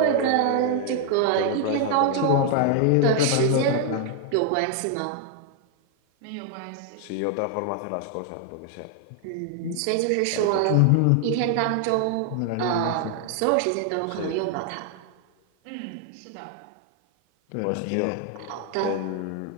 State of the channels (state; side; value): different; both; correlation 0.00